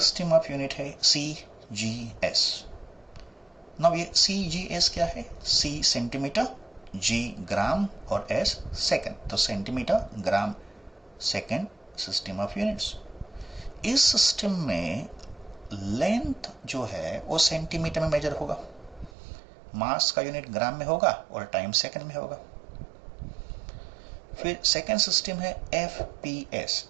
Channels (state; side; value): drops out; left; at 19.1 s